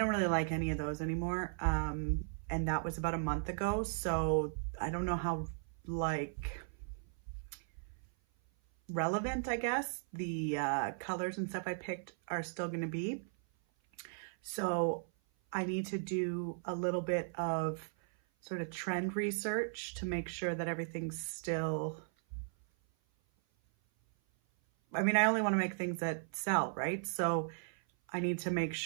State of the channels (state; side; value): silent; left; 53 dB below the other